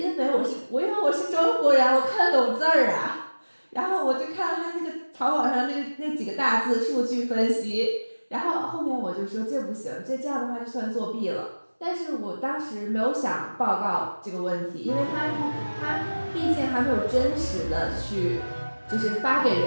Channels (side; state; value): both; inverted; correlation -1.00